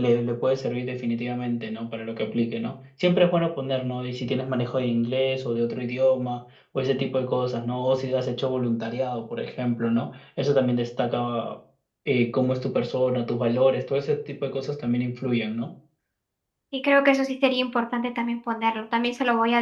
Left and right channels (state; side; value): identical; both; correlation 1.00